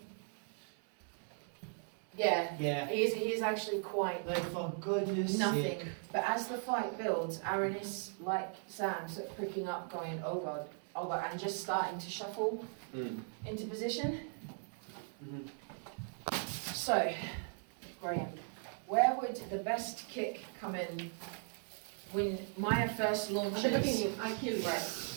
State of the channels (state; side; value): silent; left; 52 dB below the other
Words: Yeah. yeah. He is actually quite Like for goodness nothing. sake. But as the fight builds, Aaron is like Sam, sort of pricking up, going, oh god, and just starting to shuffle into position. Mhm. So, Graham, where would the best kick come in when Maya first At the launches? beginning, I kill you. Right.